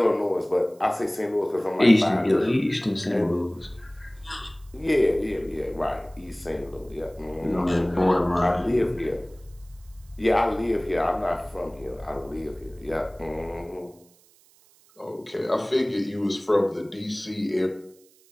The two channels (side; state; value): right; noise; hiss, 30 dB below the sound